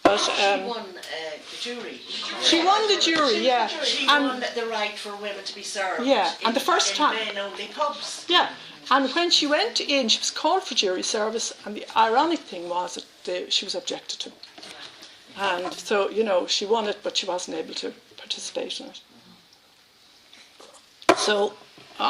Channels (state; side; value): identical; both; correlation 1.00